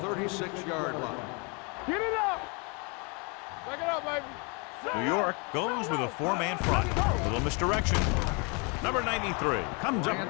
36-yard line. Get it up. Back it up, baby. New York goes with a 4-man front. A little misdirection. Number 93 comes up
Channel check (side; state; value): right; quieter; 32.5 dB